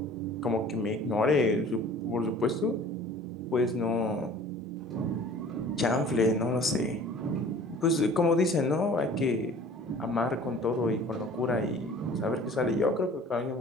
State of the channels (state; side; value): normal; both; correlation 0.47